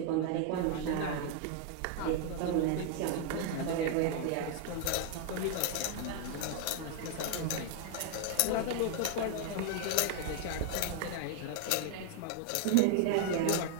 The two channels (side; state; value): both; different; correlation 0.00